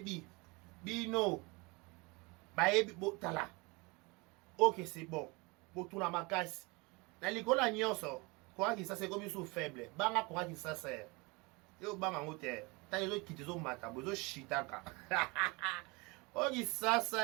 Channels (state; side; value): quieter; left; 26.7 dB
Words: bino bayebi botala ok c'est bon botuna makasi na likola nyonso kwa ki ça c'est comme sous faible banga kwa ki ça c'est yo banga ngote ta yo kitizo mata bozo shitaka ok ça